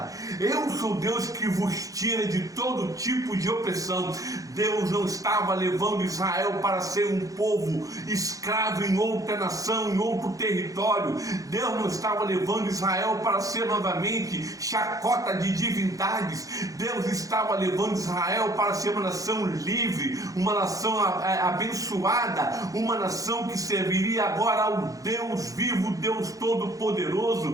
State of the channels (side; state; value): left; late; 0.17 ms